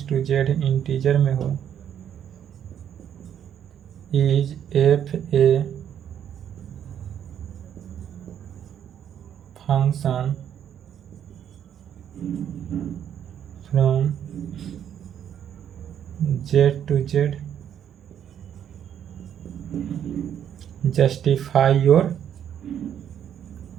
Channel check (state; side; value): quieter; left; 9.4 dB